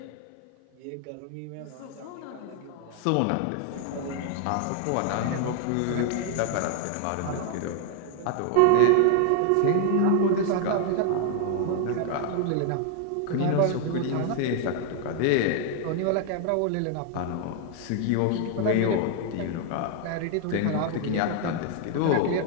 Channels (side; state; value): both; different; correlation 0.00